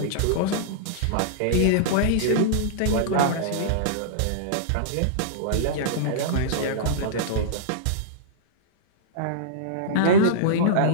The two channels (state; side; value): different; both; correlation -0.03